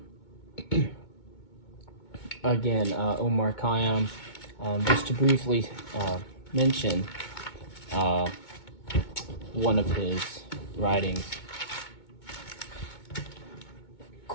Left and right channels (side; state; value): right; late; 2.2 ms